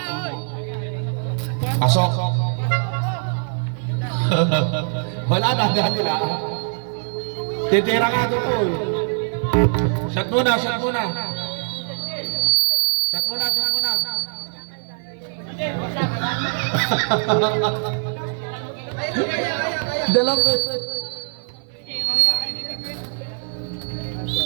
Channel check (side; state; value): left; silent; 56 dB below the other